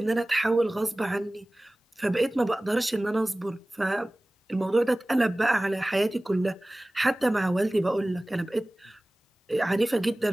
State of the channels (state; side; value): normal; both; correlation 0.98